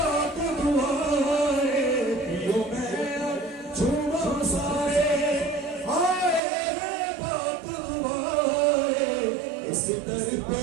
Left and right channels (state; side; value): drops out; left; at 6.4 s